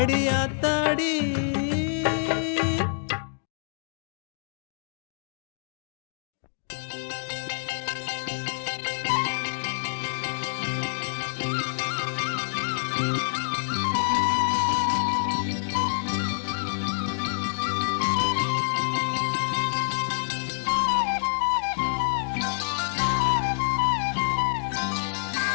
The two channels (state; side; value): silent; right; digital silence